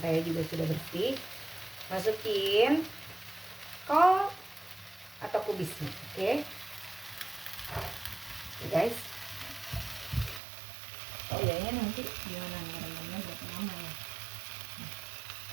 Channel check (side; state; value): left; drops out; at 10.4 s